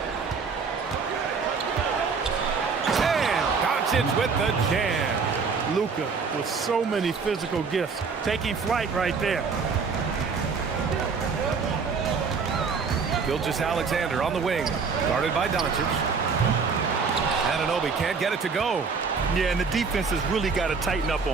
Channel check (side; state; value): left; quieter; 5.2 dB